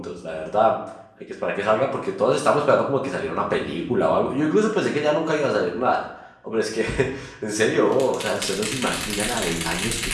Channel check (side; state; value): both; identical; correlation 1.00